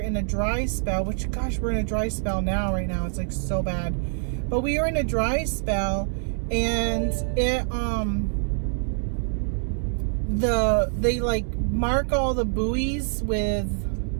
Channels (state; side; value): silent; left; 62 dB below the other